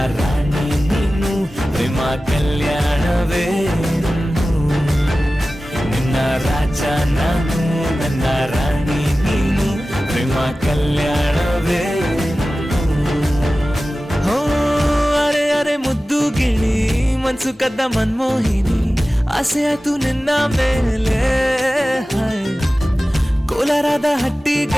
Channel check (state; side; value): normal; both; correlation 0.96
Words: ರಾಣಿ ನೀನು ಪ್ರೇಮ ಕಲ್ಯಾಣವೇ ನಿನ್ನ ರಾಜ ನಾನು ನನ್ನ ರಾಣಿ ನೀನು ಪ್ರೇಮ ಕಲ್ಯಾಣವೇ ಹೋ ಅರೆ ಅರೆ ಮುದ್ದು ಗಿಳಿ ಮನ್ಸು ಕದ್ದ ಮನ್ಮೋಹಿನಿ ಆಸೆ ಆತು ನಿನ್ನ ಮೇಲೆ ಕೋಲಾರದ ಹಟ್ಟಿ